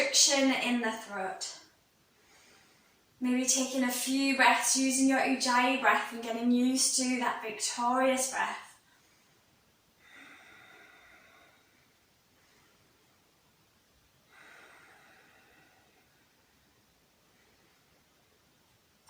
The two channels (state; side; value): identical; both; correlation 1.00